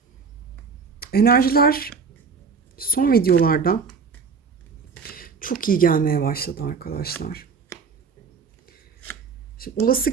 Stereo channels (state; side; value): quieter; left; 5.3 dB